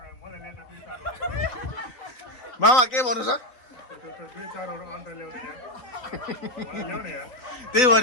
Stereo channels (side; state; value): right; late; 3.9 ms